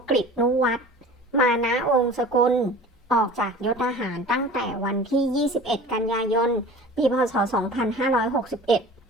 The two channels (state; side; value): normal; both; correlation 0.41